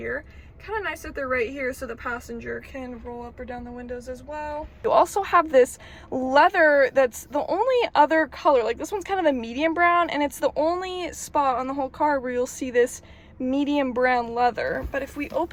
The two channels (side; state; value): both; identical; correlation 1.00